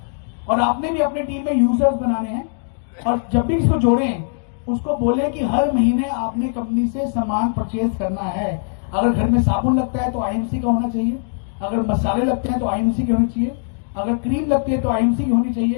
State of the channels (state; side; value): silent; right; digital silence